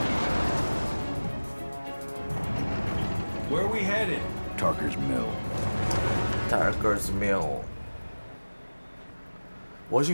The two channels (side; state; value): both; inverted; correlation -1.00